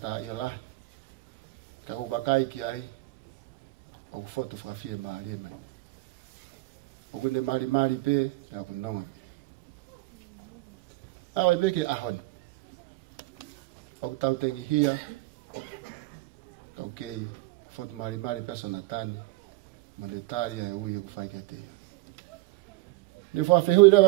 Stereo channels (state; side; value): quieter; left; 21.2 dB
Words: tā i alahi, ka wakai ki ai, o kufotu whakawhie maari e mai. O kune mari pe, pe aku nonga pe. Awa i peke ahoni. O ku tau tengi hia, kau kei, fotu mari pe Sonatane, monetaria e ui e ku whaike te ia. Ni whawhihui